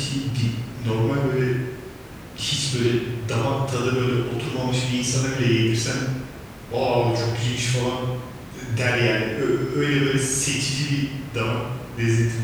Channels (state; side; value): identical; both; correlation 1.00